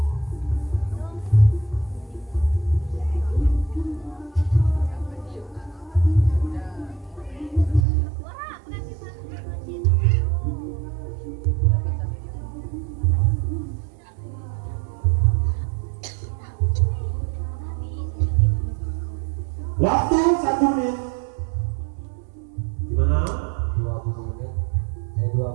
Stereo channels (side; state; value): left; drops out; at 7.9 s